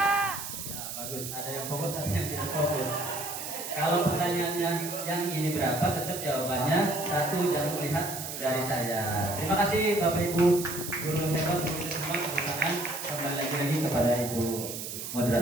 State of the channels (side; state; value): right; noise; hiss, 7 dB below the sound